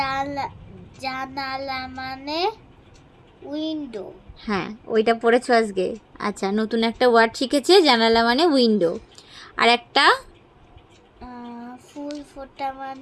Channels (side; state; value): both; identical; correlation 1.00